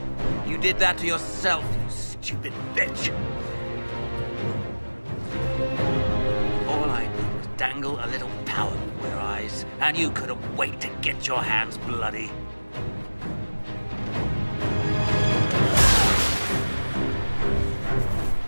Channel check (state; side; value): inverted; both; correlation -1.00